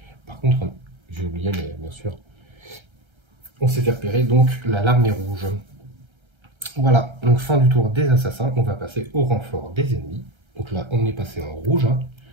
Par contre, j'ai oublié, mais bien sûr, on s'est fait repérer, donc la larme est rouge. Voilà, donc fin du tour des assassins, on va passer au renfort des ennemis. Donc là, on est passé en rouge. Hein.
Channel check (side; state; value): left; late; 1.3 ms